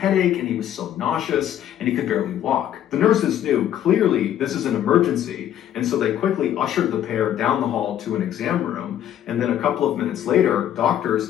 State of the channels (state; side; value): quieter; right; 10.9 dB